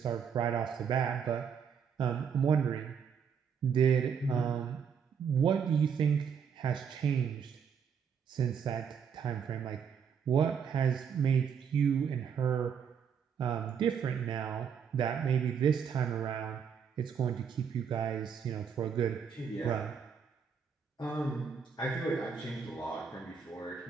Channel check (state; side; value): quieter; left; 7.0 dB